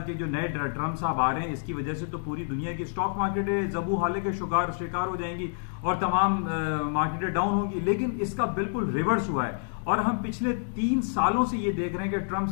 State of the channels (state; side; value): silent; right; digital silence